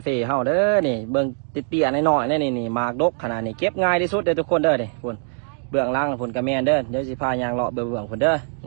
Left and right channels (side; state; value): left; silent; 64 dB below the other